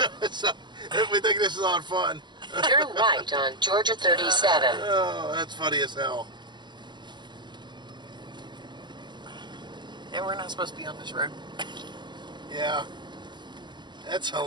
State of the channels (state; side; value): late; left; 0.22 ms